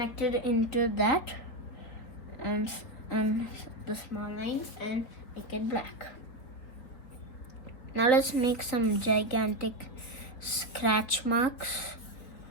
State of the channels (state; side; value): late; right; 4.3 ms